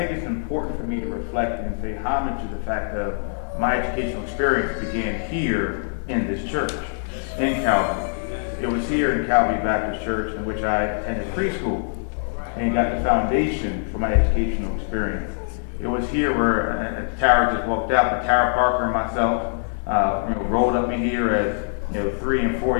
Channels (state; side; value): silent; right; digital silence